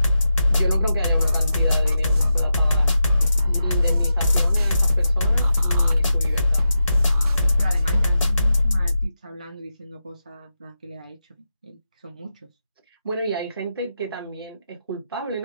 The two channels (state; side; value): inverted; both; correlation -0.89